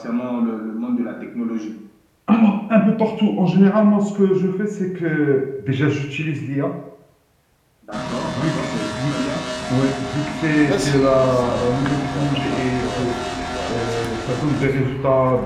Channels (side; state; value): both; identical; correlation 1.00